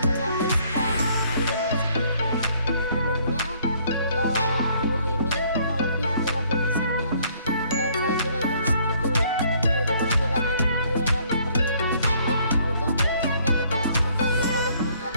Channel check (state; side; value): inverted; both; correlation -0.63